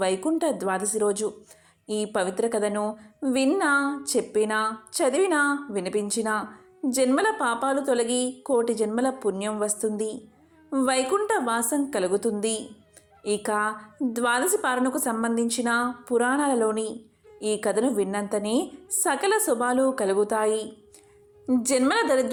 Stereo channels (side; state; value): both; identical; correlation 1.00